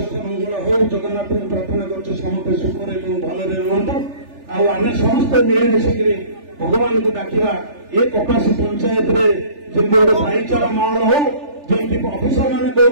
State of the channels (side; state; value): left; late; 3.4 ms